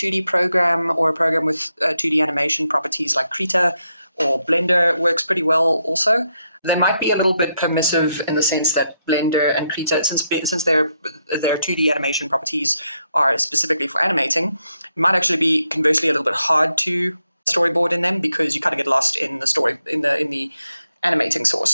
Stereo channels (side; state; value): both; inverted; correlation -0.81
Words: program or a program with 2D animation properties like Krita or Blender works pretty well also. They might be a little bit permissive in the sense that Blender and Krita, since their 2D animation properties are specifically for animating, it might actually be conversely a little bit hard to storyboard in them because you kind of get lost in the story in the animating